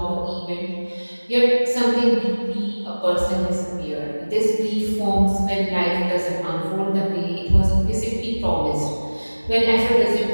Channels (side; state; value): both; inverted; correlation -1.00